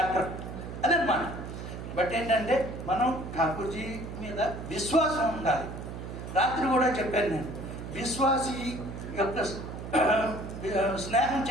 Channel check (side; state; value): right; noise; hum, 9 dB below the sound